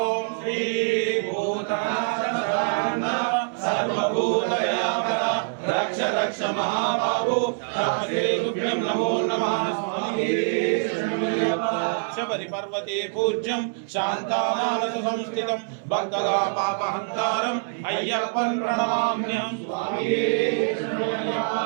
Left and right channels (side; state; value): left; silent; 62 dB below the other